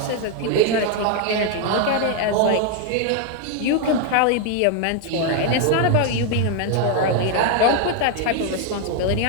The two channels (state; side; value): different; both; correlation 0.01